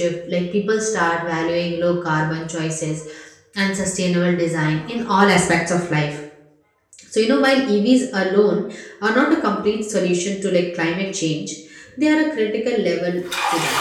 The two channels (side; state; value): both; identical; correlation 1.00